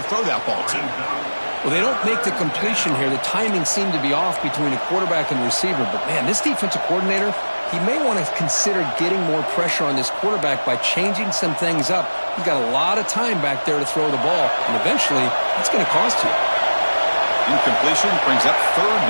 throw that ball to. Well, they don't make the completion here. The timing seemed to be off between the quarterback and the receiver. But, man, this defensive coordinator, he may want to consider getting more pressure on this quarterback by changing some things up. He's got a lot of time back there to throw the ball. And eventually, it's going to cost you. Incompletion brings up third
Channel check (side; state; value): both; inverted; correlation -1.00